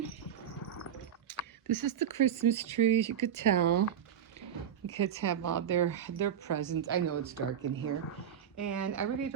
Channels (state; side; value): quieter; left; 9.0 dB